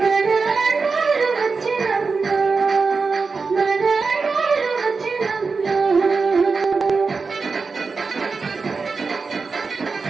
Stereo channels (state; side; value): quieter; left; 4.6 dB